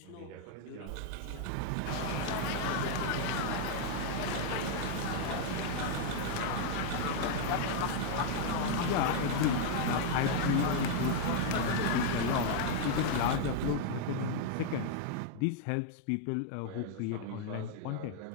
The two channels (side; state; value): both; different; correlation 0.00